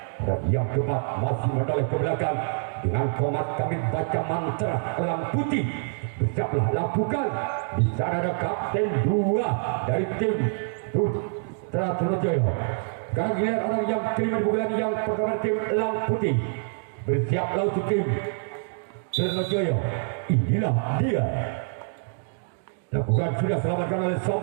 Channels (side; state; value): left; silent; digital silence